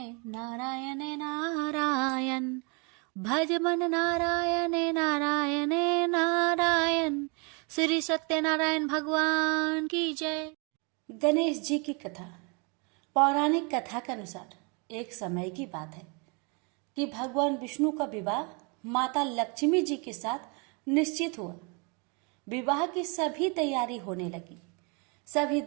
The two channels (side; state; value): left; quieter; 33.1 dB